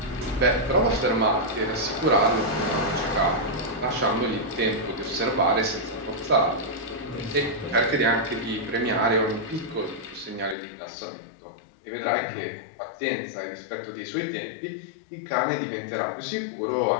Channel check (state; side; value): drops out; right; at 10.6 s